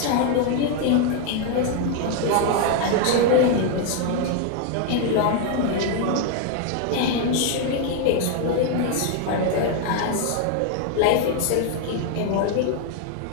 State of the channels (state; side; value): different; both; correlation 0.00